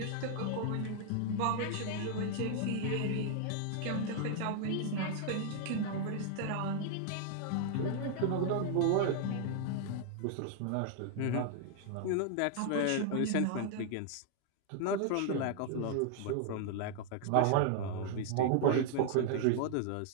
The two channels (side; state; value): both; different; correlation 0.00